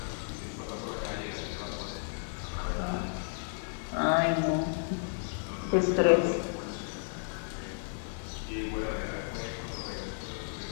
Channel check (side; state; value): right; silent; digital silence